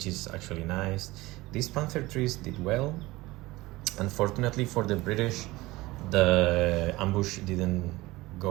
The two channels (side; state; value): left; quieter; 19.7 dB